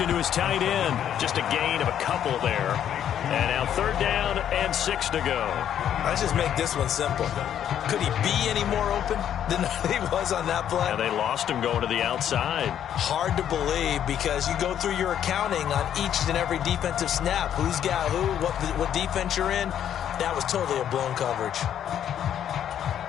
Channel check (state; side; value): quieter; right; 9.9 dB